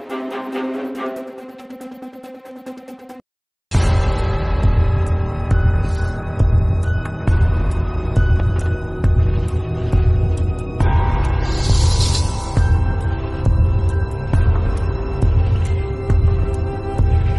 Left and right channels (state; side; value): identical; both; correlation 1.00